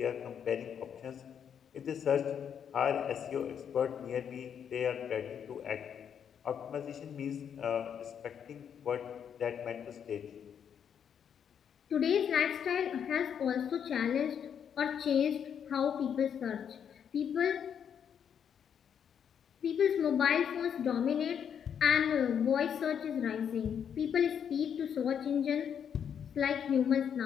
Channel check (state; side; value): quieter; right; 8.1 dB